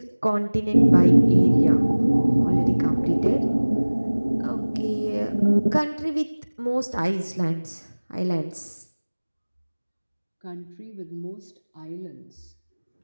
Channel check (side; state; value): both; inverted; correlation -1.00